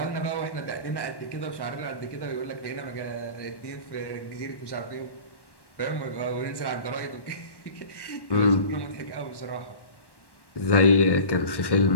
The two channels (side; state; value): right; late; 1.1 ms